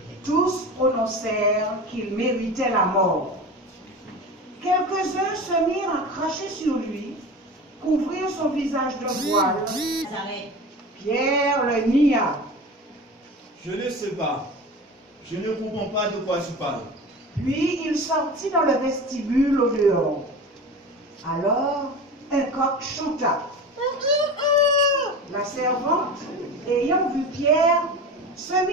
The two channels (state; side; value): normal; both; correlation 0.31